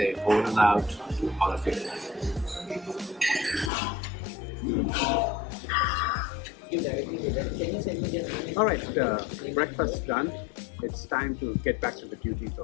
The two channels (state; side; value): drops out; right; at 3.7 s